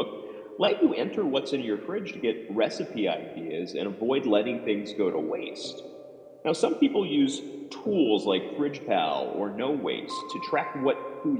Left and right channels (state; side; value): identical; both; correlation 1.00